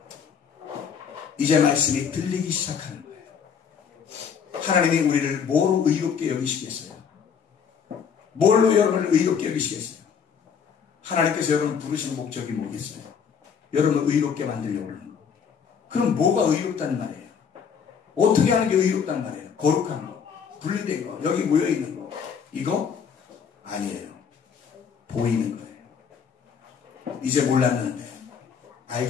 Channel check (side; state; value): right; quieter; 6.9 dB